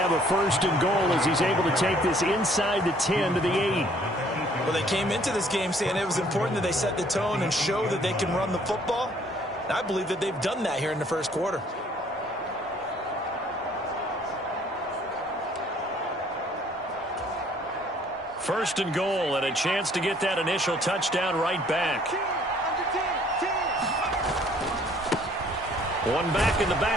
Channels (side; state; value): both; normal; correlation 0.60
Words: a 1st and goal as he's able to take this inside the 10 to the 8. Well, they came into this game saying it was important that they set the tone and show that they can run the football. And I believe that they've done that here in the 1st quarter. 1st and goal, and a chance to get that initial touchdown right back. One back in the